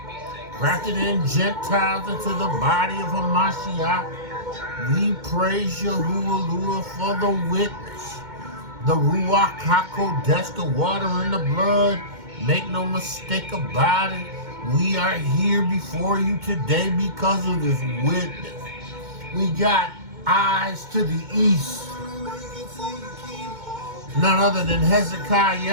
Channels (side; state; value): left; late; 2.1 ms